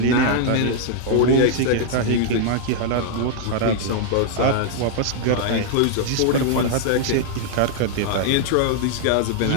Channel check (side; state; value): both; different; correlation 0.00